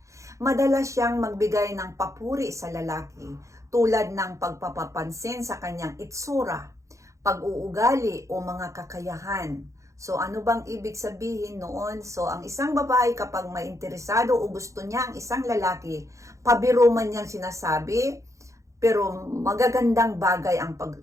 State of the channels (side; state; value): left; late; 0.15 ms